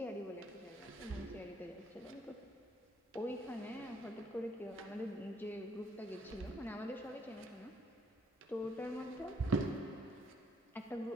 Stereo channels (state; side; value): normal; both; correlation 0.68